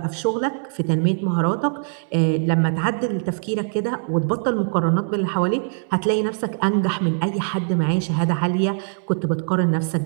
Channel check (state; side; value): silent; left; 64 dB below the other